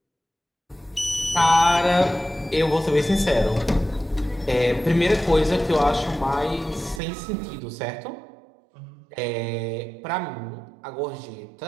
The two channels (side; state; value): left; drops out; at 7.0 s